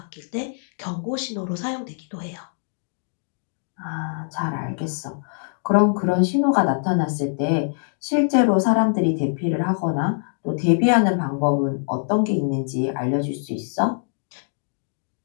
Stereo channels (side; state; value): right; silent; digital silence